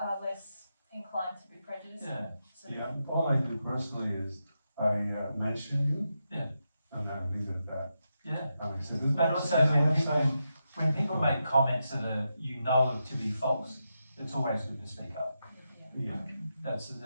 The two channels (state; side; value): inverted; both; correlation -0.86